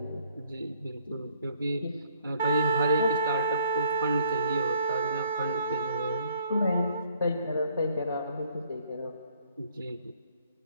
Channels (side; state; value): both; inverted; correlation -0.64